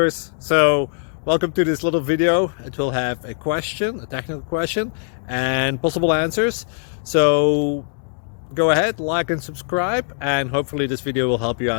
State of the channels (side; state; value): right; silent; digital silence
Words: So welcome to this little video. It will have a question, a technical question, and possible answers. So go ahead, like and subscribe, and hopefully this video will help you